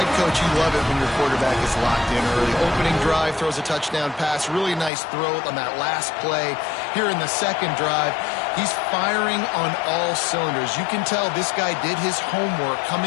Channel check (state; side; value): drops out; right; at 4.9 s